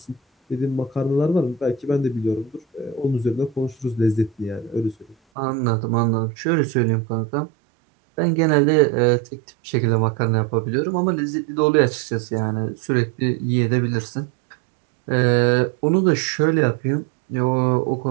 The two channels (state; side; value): drops out; left; at 5.2 s